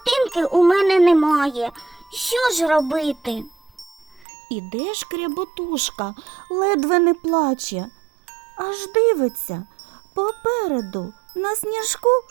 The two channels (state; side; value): drops out; left; at 4.2 s